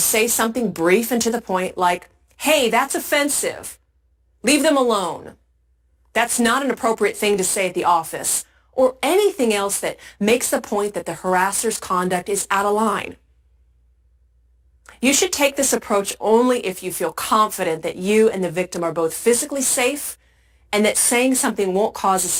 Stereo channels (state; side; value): identical; both; correlation 1.00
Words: something brief and to the point like, "Hey, that's offensive. Leave them alone. That's not an appropriate thing to say at the office," or anything else that makes the point that the harasser's conduct is out of line. You should take this approach only if you feel confident that you and the victim are both physically safe and that saying something won't cause a